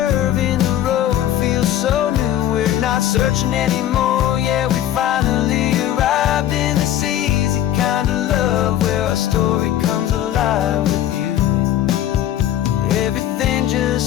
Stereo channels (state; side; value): quieter; right; 11.8 dB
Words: in the road feels so new. We're not searching anymore, yeah, we finally arrived in this easy kind of love, where our story comes alive with you. Everything